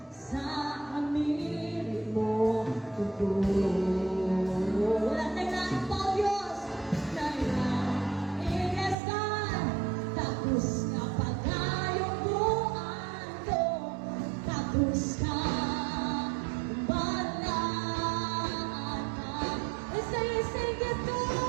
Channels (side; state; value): left; drops out; at 9.0 s